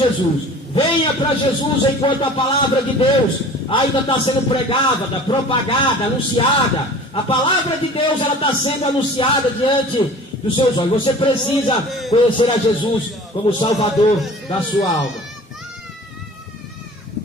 Venha para Jesus enquanto a palavra de Deus ainda está sendo pregada, propagada, anunciada. A palavra de Deus, ela está sendo anunciada diante dos seus olhos. Você precisa conhecer a Jesus como Salvador da sua alma.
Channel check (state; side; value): normal; both; correlation 0.43